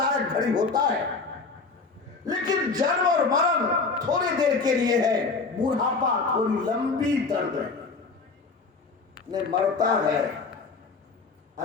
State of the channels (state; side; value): quieter; right; 4.3 dB